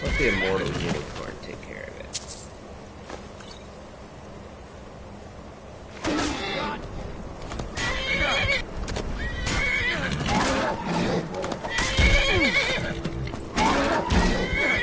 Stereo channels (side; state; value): both; identical; correlation 1.00